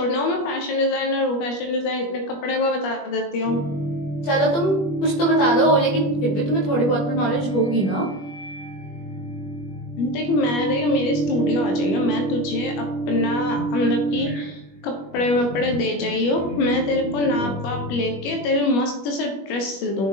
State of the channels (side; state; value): right; late; 21 ms